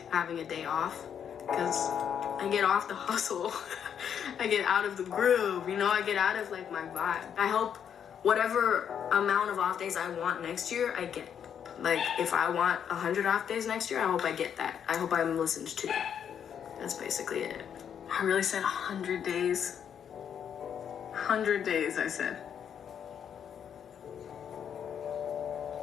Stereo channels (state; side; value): quieter; right; 8.3 dB